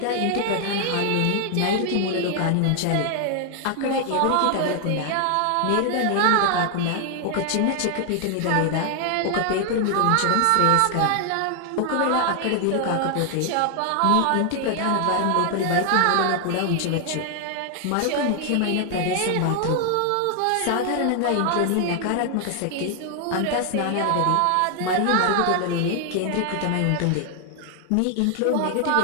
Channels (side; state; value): both; different; correlation 0.00